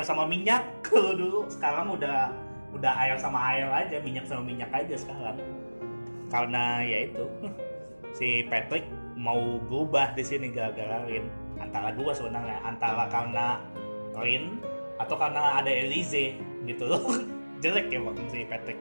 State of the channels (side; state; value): both; inverted; correlation -1.00